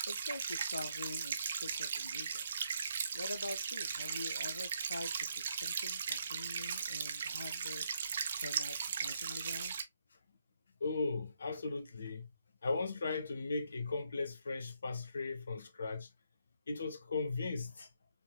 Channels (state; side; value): inverted; both; correlation -0.75